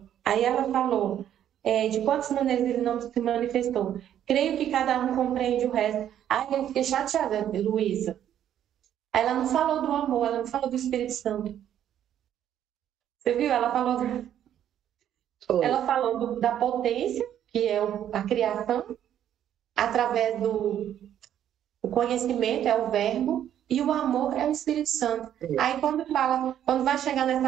Aí ela falou, de quantas maneiras ele não se manifestou. Creio que cada um compreende o resto. Aí eu fiquei chateada, Luísa. Ela não falou do amor, ela não falou do Espírito Santo. Você viu? Ela falou da potência, que é a criação, através do conhecimento, é o verbo, e o amor é o Espírito Santo. Aí quando vai chegar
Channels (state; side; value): quieter; left; 10.5 dB